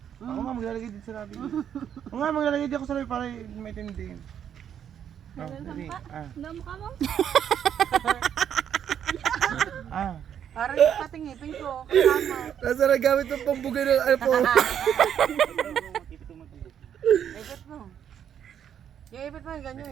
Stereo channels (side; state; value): left; quieter; 9.1 dB